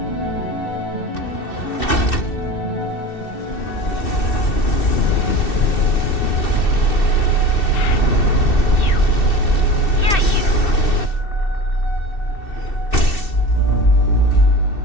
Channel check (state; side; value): late; right; 2.7 ms